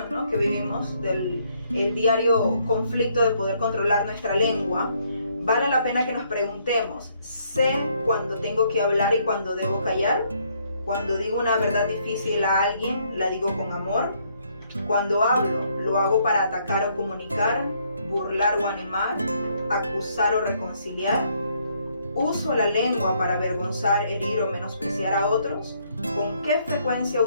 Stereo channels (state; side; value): inverted; both; correlation -0.70